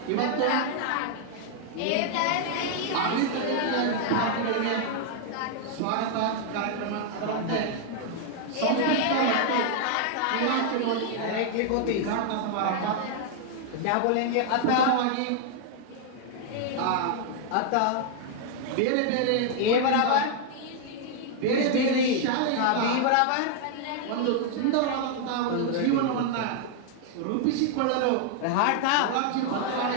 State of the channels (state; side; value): different; both; correlation 0.00